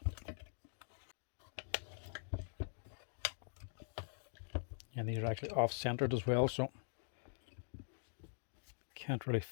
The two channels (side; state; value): right; silent; digital silence